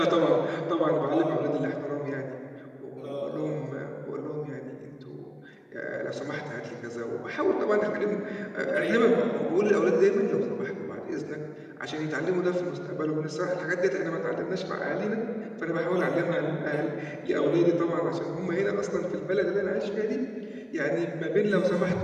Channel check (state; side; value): identical; both; correlation 1.00